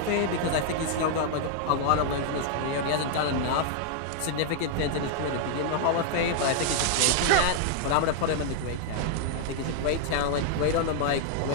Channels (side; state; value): both; different; correlation 0.00